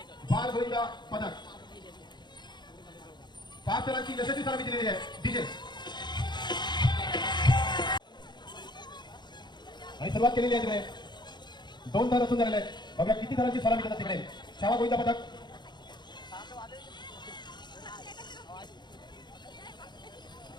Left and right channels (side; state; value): right; late; 0.21 ms